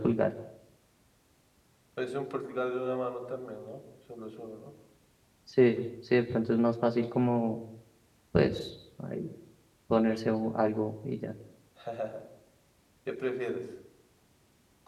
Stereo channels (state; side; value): identical; both; correlation 1.00